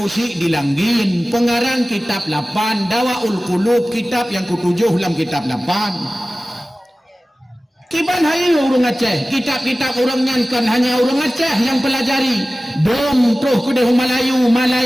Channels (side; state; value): both; normal; correlation 0.97